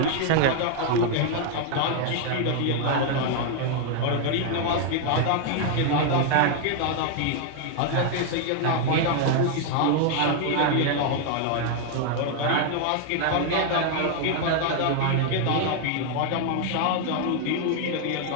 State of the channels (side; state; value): both; different; correlation 0.00